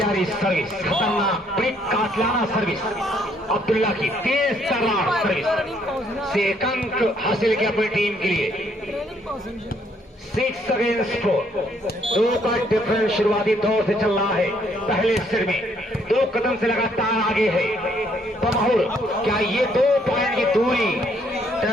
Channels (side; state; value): both; normal; correlation 0.68